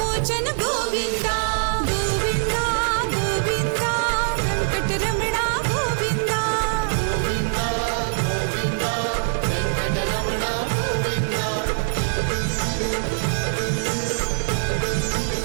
గోవింద గోవింద గోవింద వెంకటరమణ గోవింద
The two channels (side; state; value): left; silent; 63 dB below the other